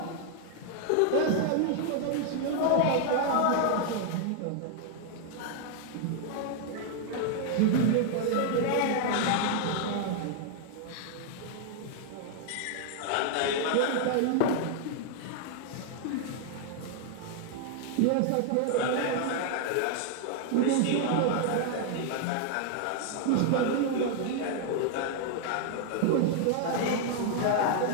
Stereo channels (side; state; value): both; different; correlation 0.00